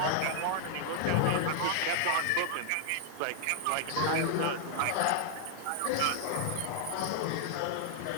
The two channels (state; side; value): different; both; correlation 0.00